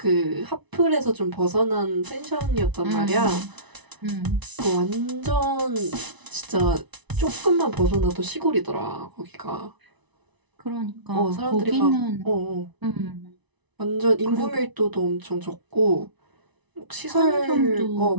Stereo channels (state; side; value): late; left; 1.0 ms